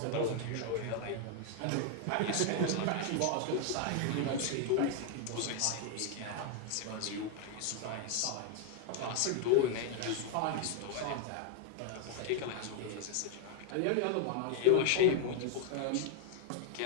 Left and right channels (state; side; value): different; both; correlation 0.00